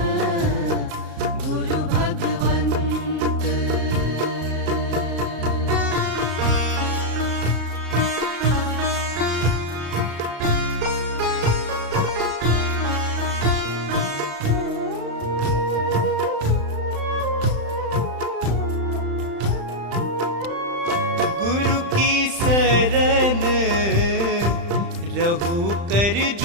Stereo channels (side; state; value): left; late; 35 ms